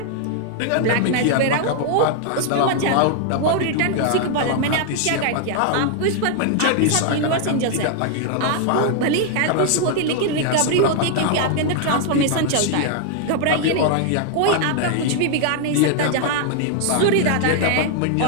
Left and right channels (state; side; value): different; both; correlation 0.00